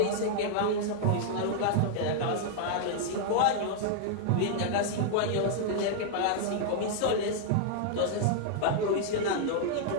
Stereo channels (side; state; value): both; different; correlation -0.01